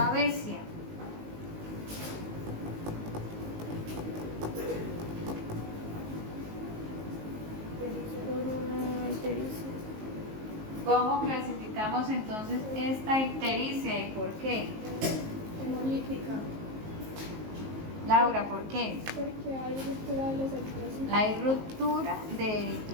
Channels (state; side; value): late; left; 19 ms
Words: ¿Cómo clasificamos entonces esta ictericia y por qué? Hemolítica. Laura, ¿por qué? Porque hay ruptura de los eritrocitos. Hay ruptura de